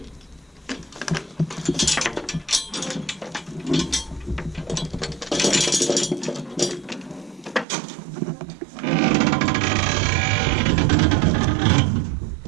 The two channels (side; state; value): left; drops out; at 7.7 s